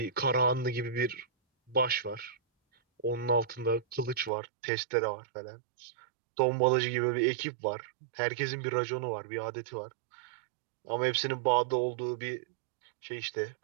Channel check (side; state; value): left; drops out; at 4.3 s